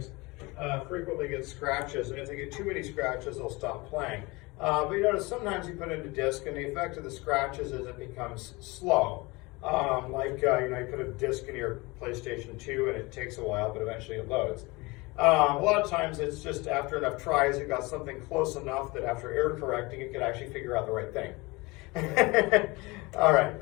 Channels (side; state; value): right; quieter; 24.2 dB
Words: frequently get scratches, and if they get too many scratches, they'll stop playing. But you notice sometimes you put in a disc, and the effect of the scratches is it becomes slow. Like you know, you put a disc in your PlayStation 2, and it takes a while, but eventually it loads. A lot of times it's just after enough tries, it got something close enough that after error correcting, it could actually figure out the right thing. All right,